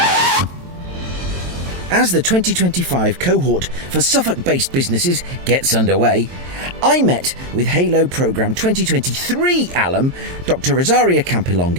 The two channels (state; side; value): late; left; 22 ms